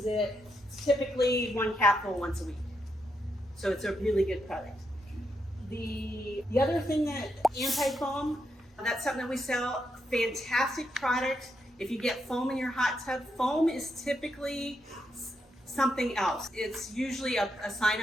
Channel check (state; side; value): normal; both; correlation 0.81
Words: it. It's typically 1 capful once a week. So it's a really good product. The other thing that anti-foam, That's something that we sell. Fantastic product. If you get foam in your hot tub, foam is typically something else. It's usually a sign